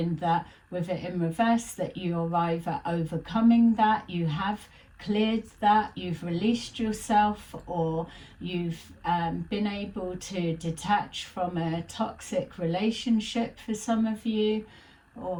that with it in reverse, that you're either overcoming that, you have cleared that, you've released yourself, or you've been able to detach from a toxic relationship for some of you,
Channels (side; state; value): both; identical; correlation 1.00